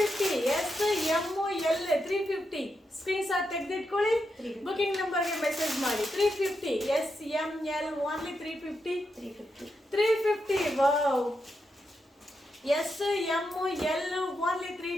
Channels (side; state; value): both; normal; correlation 0.85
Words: S, M, L 350. Screenshot ತೆಗೆದಿಟ್ಕೊಳ್ಳಿ, booking ನಂಬರ್ಗೆ message ಮಾಡಿ. 350. S, M, L only 350. Wow, S M L only